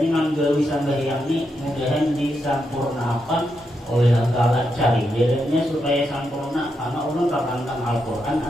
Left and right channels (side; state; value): both; normal; correlation 0.83